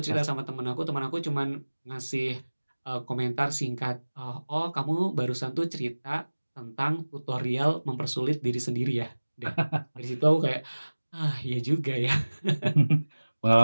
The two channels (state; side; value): inverted; both; correlation -1.00